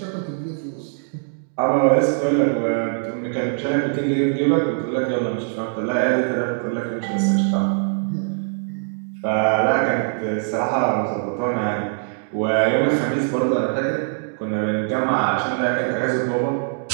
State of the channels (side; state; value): left; silent; digital silence